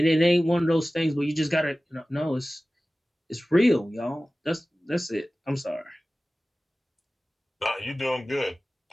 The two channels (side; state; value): both; normal; correlation 0.97